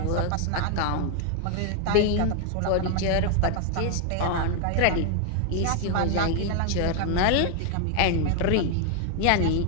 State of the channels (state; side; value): different; both; correlation 0.00